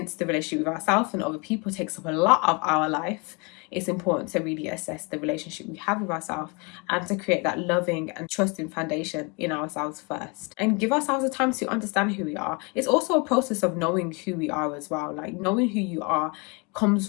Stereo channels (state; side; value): quieter; right; 30.9 dB